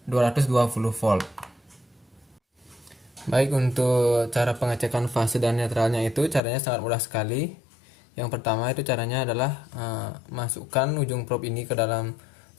220 volt. Baik, untuk cara pengecekan fase dan netralnya itu caranya sangat mudah sekali. Yang pertama itu caranya adalah masukkan ujung probe ini ke dalam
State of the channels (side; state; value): right; drops out; at 6.4 s